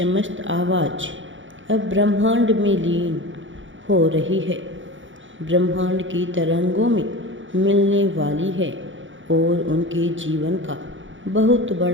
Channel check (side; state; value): left; late; 0.56 ms